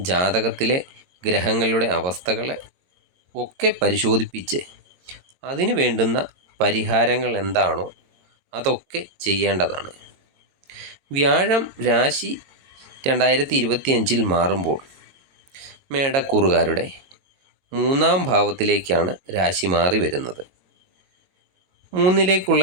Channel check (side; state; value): left; late; 22 ms